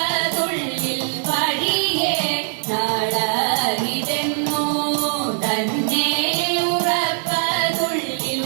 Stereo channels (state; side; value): silent; left; 57 dB below the other